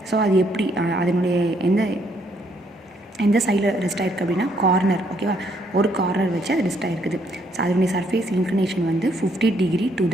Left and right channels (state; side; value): normal; both; correlation 0.70